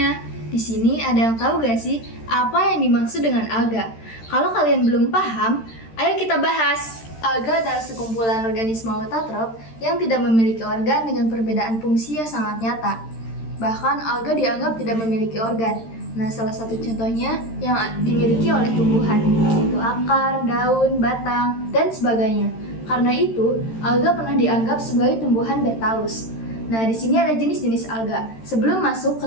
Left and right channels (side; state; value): right; late; 13 ms